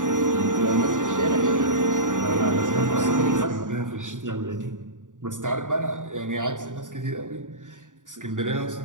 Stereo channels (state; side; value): late; left; 0.87 ms